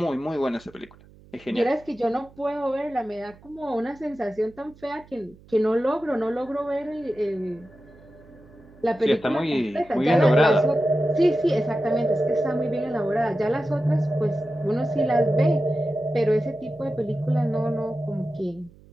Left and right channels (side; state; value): right; noise; hum, 25 dB below the sound